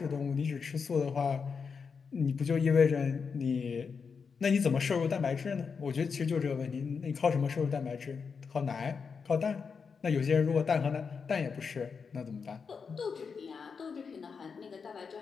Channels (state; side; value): quieter; right; 5.6 dB